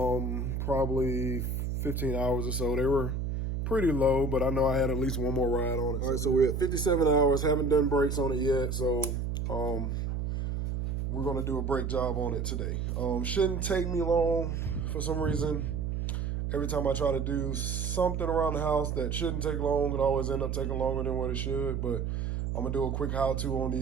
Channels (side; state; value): right; noise; hum, 1 dB below the sound